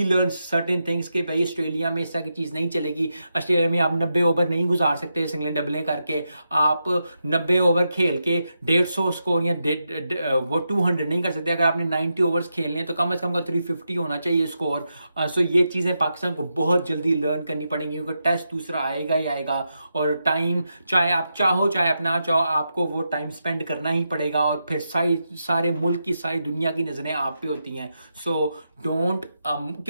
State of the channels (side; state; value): both; inverted; correlation -0.86